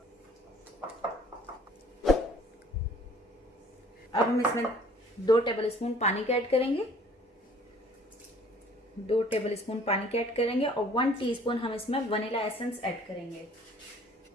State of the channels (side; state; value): both; normal; correlation 0.54